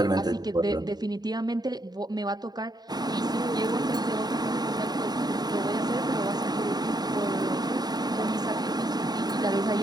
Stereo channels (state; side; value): late; left; 0.20 ms